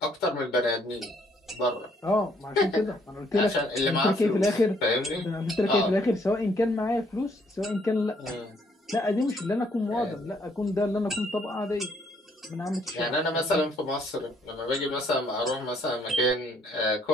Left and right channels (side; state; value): both; normal; correlation 0.68